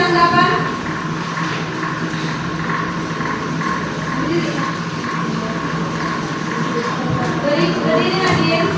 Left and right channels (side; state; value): both; identical; correlation 1.00